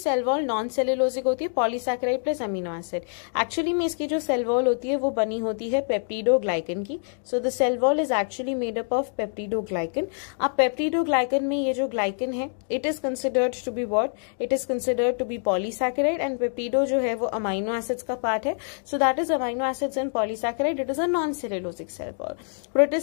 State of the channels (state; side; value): silent; right; 61 dB below the other